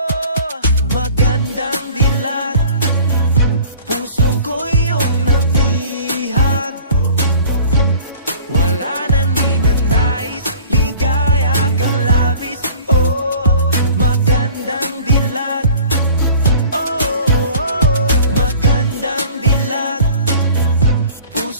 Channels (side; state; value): both; inverted; correlation -0.47